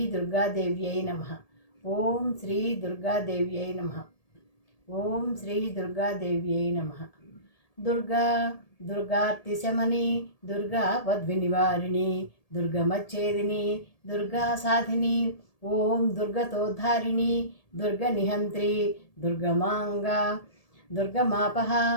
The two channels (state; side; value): late; right; 1.8 ms